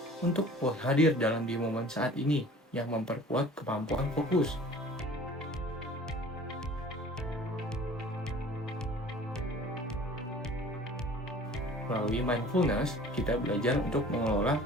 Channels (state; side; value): normal; both; correlation 0.46